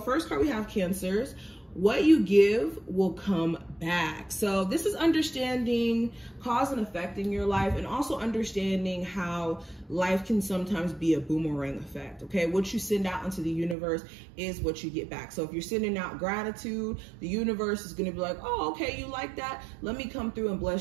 card we have Cancers. What you give will come back. So this is understanding cause and effect in your life, and also understanding how life can sometimes be a boomerang effect. Okay, what you send out into the universe is what you get back. So if you're sending out gratitude, the universe is going to be like, oh, okay, you like that, let me come through and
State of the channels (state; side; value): drops out; left; at 13.8 s